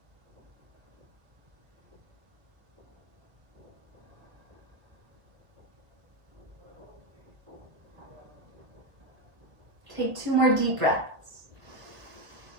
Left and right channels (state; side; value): late; left; 1.3 ms